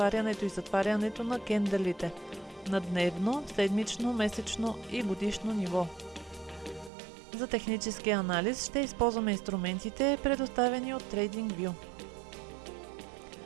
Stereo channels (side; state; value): left; drops out; at 6.9 s